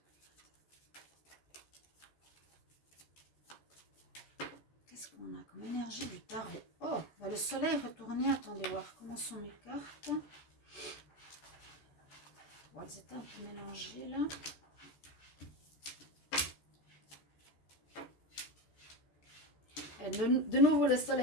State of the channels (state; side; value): late; right; 14 ms